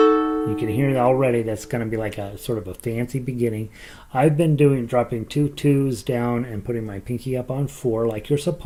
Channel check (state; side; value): identical; both; correlation 1.00